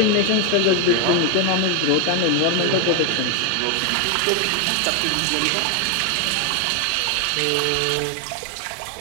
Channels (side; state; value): both; different; correlation 0.01